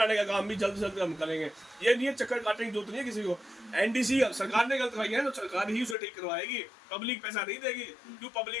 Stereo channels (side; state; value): right; drops out; at 6.0 s